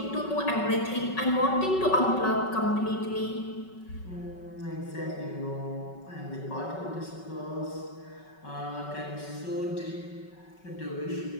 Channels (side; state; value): right; late; 5.3 ms